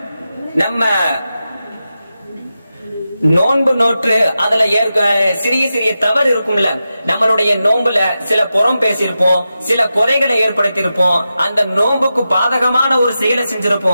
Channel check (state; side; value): inverted; both; correlation -0.91